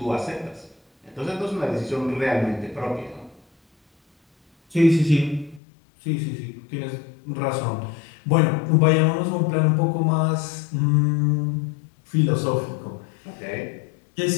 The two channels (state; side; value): drops out; right; at 5.6 s